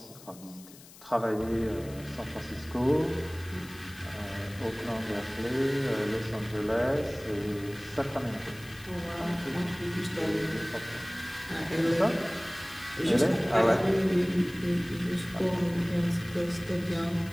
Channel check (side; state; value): left; noise; hiss, 20 dB below the sound